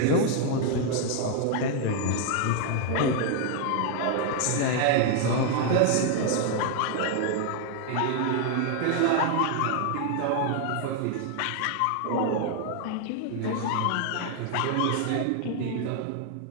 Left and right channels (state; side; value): different; both; correlation 0.00